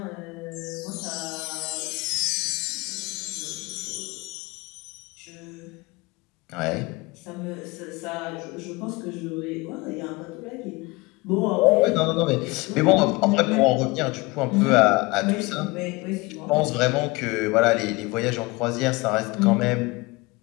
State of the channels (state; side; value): quieter; right; 23.7 dB